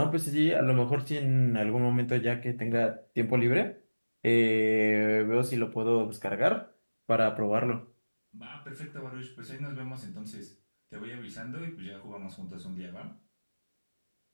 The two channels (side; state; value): both; inverted; correlation -1.00